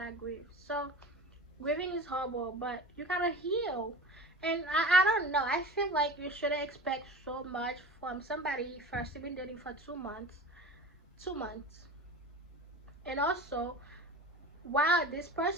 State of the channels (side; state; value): both; normal; correlation 0.34